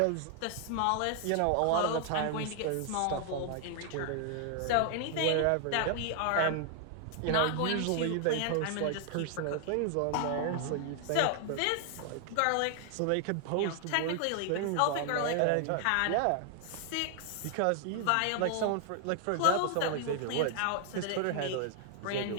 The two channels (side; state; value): both; different; correlation 0.00